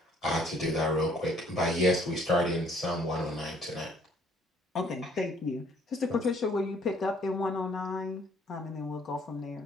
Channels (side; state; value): both; normal; correlation 0.61